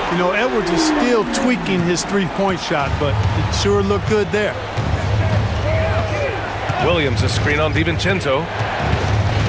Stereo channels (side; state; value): both; identical; correlation 1.00